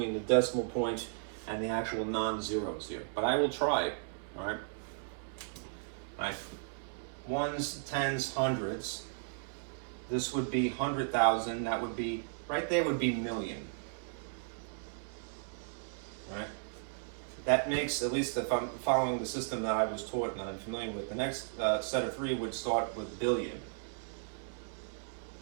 the decimal point and the actual non-zeros here. But I will try, all right? Right. Ones, tens, hundreds. This would be 100,000. That would be, right there would be million. Right? That makes, at least if I'm following the system that I was taught and that I'm familiar with, the next set of three would start with billion.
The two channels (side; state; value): left; silent; digital silence